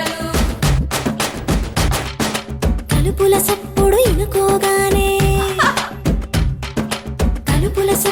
తలుపుల సప్పుడు ఇనుకోగానే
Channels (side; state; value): both; identical; correlation 1.00